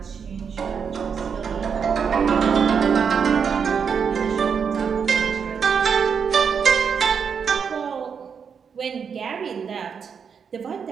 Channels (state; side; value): quieter; left; 6.6 dB